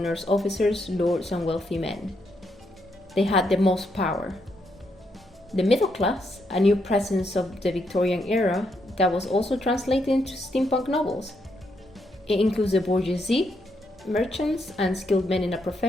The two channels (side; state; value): both; normal; correlation 0.78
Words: officers, lords, and wealthy men. They had the most power. The middle class, a new presence of the Victorian era, that was also translated into steampunk novels. It includes the bourgeoisie, merchants, and skilled men in a